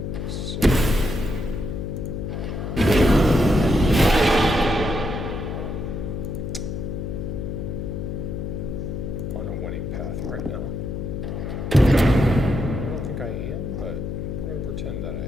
so on a winning path right now. I don't think I am, but I'm going to pretend that I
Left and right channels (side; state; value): left; noise; hum, 4 dB below the sound